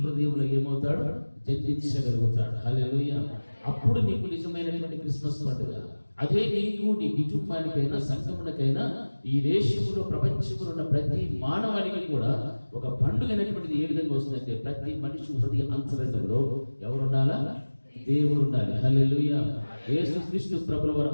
ఏమవుతాడు, జన్మించగలుగుతాడు. హల్లెలూయా. అప్పుడు నీకు నిజమైనటువంటి క్రిస్మస్ పండుగ. అదే నీకు, నీ కుటుంబానికైనా, సంఘమునకైనా, ఈ దేశంలో, ప్రపంచంలో ఉన్న ప్రతి మానవానికి కూడా ఒక పండుగ అనేటువంటిది ఏ విధంగా వస్తుందంటే ప్రతి మనిషి హృదయ అంతరంగంలో ఎవరుండాలా, దేవుడు ఉండాలి. హల్లెలూయా. యేసుక్రీస్తు ప్రభువు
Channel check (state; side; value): inverted; both; correlation -1.00